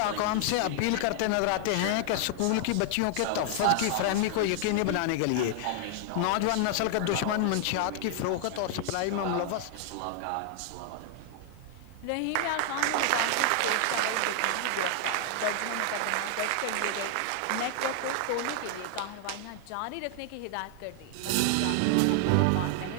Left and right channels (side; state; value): both; different; correlation 0.00